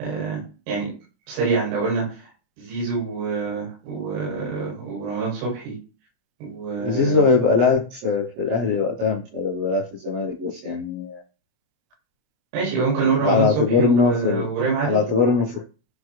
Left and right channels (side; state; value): left; late; 33 ms